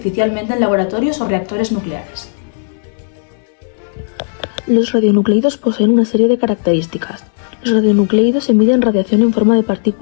en laboratorios o reactores nucleares. Los radionucleidos poseen una serie de características. Los radionucleidos emiten radiación en forma de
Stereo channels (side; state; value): right; silent; digital silence